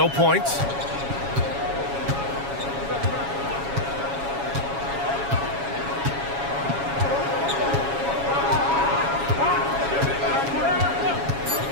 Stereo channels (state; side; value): late; left; 7.2 ms